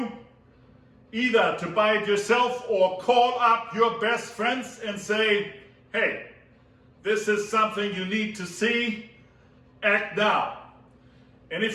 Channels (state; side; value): identical; both; correlation 1.00